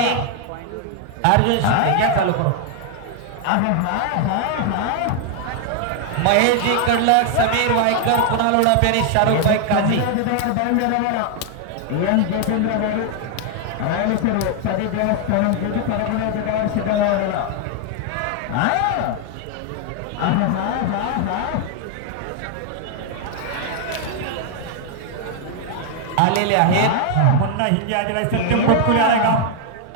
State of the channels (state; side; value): different; both; correlation 0.00